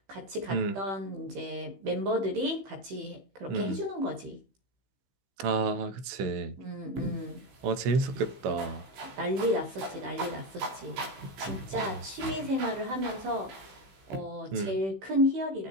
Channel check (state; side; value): late; left; 16 ms